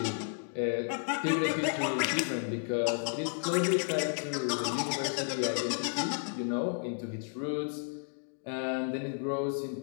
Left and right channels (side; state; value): right; silent; digital silence